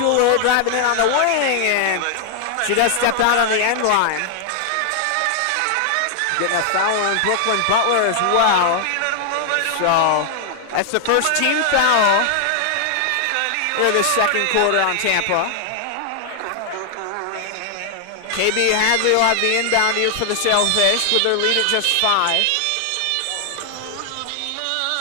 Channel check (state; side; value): different; both; correlation 0.00